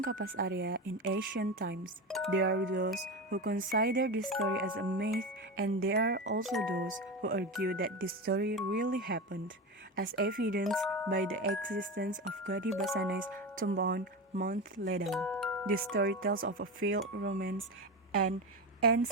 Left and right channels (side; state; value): both; normal; correlation 0.22